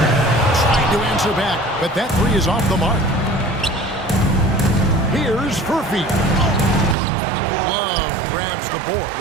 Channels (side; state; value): left; drops out; at 7.0 s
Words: Trying to answer back, but that 3 is off the mark. Here's Furphy. Love grabs the board.